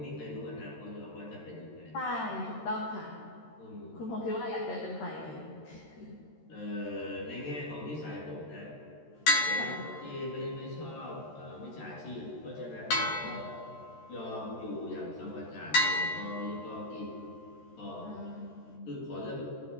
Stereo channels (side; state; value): right; late; 13 ms